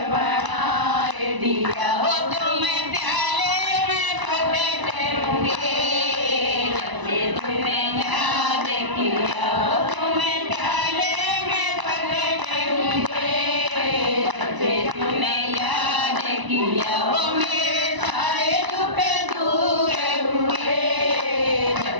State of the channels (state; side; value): late; left; 1.0 ms